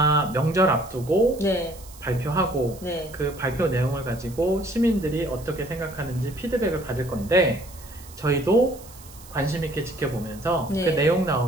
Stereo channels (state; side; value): noise; right; hiss, 20 dB below the sound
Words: 명절 앞두고 네. 발표하고 네. 그 발표 내용을 가지고 시민들이 어떻게 생각하는지 피드백을 받을 건데 저희도 관심 있게 지켜보면서 네. 그 내용